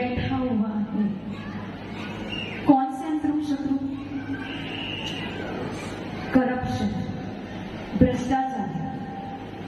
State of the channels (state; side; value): identical; both; correlation 1.00